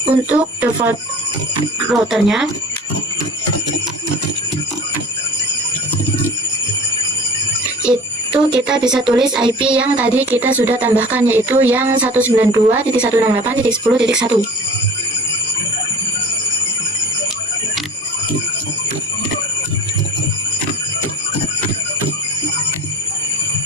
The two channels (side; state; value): both; normal; correlation 0.42